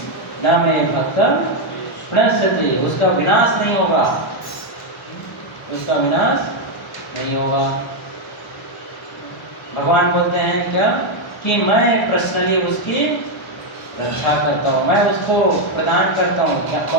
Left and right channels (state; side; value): normal; both; correlation 0.02